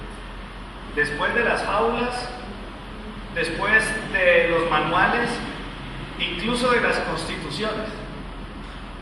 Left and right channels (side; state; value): both; identical; correlation 1.00